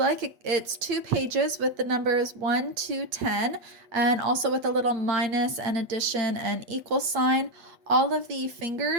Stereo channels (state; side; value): late; left; 8.5 ms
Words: It's 2 pages with the numbers 1 to 10 and also with a little minus and addition and equal sign. All of the